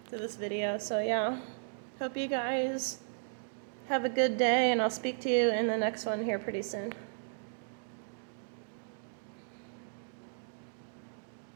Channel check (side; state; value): left; silent; digital silence